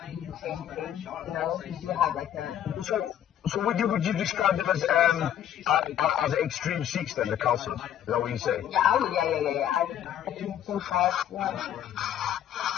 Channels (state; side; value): quieter; right; 10.6 dB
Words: do the same thing. You know, you do have like a. So would you describe them as an extreme Sikhs then, the council? Is that what you say? Yeah. I think so far.